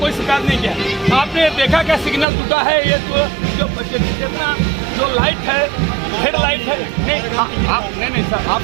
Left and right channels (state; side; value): drops out; left; at 2.2 s